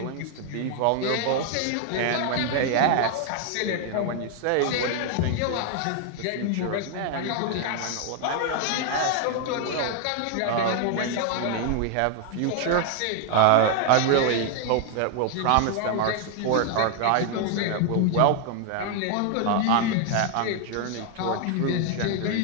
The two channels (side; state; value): both; different; correlation 0.00